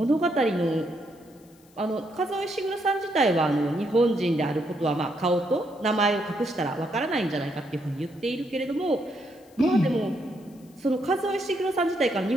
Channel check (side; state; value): left; noise; hiss, 30 dB below the sound